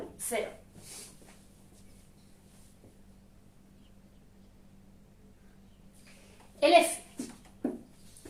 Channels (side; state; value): both; identical; correlation 1.00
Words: 0. El F.